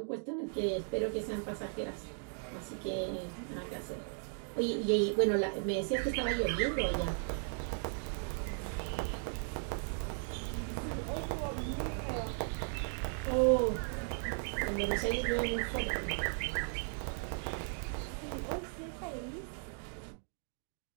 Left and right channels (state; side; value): silent; left; 53 dB below the other